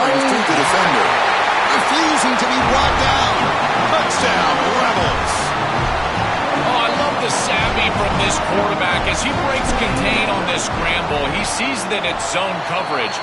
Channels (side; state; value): both; identical; correlation 1.00